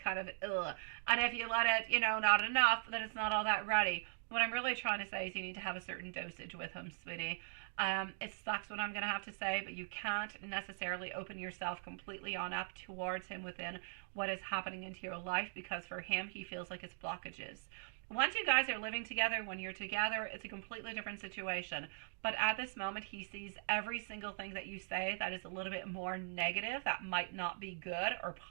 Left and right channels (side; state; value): left; silent; digital silence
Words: of ugh. And if you let it, not enough, then it's not all that ready. What I'm really trying to say is you need to have a certain dosage with him, sweetie. It sucks what I'm going to have to say, but you can't necessarily open yourself completely on up towards him within what is happening into your life, because for him, he feels like it's blockages. Once you guys are living together, when you're together, it's a completely different situation. But at this moment, he sees every single thing that you say that is a little bit more negative, that might not be good or